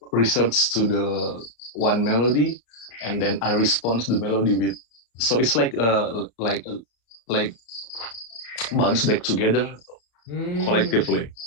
research to the one melody, and then I respond the melody with, so it's like bounce back together collectively.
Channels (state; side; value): late; right; 34 ms